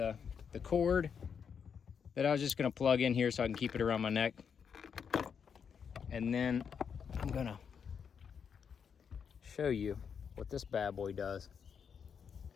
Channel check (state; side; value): quieter; right; 6.9 dB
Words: cord that I was just gonna plug in here so I can keep it around my neck. And then I'm gonna show you what this bad boy does.